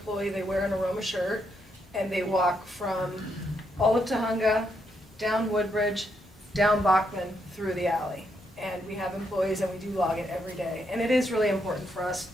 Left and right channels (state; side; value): normal; both; correlation 0.78